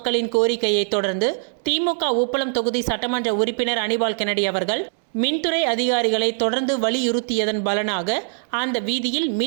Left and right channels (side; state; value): left; silent; digital silence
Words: கோரிக்கையை தொடர்ந்து திமுக உப்பளம் தொகுதி சட்டமன்ற உறுப்பினர் அனிபால் கென்னடி அவர்கள் மின்துறை அதிகாரிகளை தொடர்ந்து வலியுறுத்தியதன் பலனாக அந்த வீதியில்